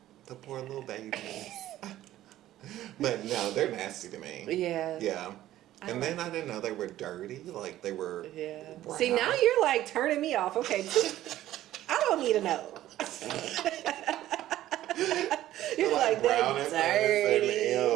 The poor little babies. But no, they're nasty to me. Yeah. Yeah. And then I didn't know they were dirty. Like they were. Yeah. Brown. See, now you're like turning me off. Okay. I don't need to know. You're like, they're dirty.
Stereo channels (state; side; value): quieter; left; 13.9 dB